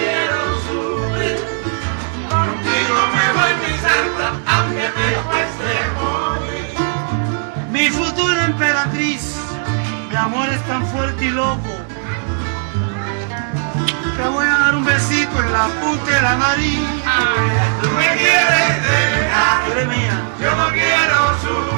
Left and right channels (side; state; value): left; silent; 60 dB below the other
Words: Aunque me cueste morir. Mi futura emperatriz, mi amor es tan fuerte y loco. Te voy a dar un besito en la punta de la nariz. Tú me quieres dejar, Eres mía. yo no quiero